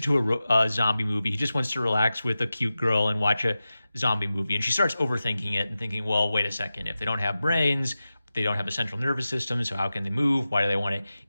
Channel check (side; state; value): both; inverted; correlation -0.94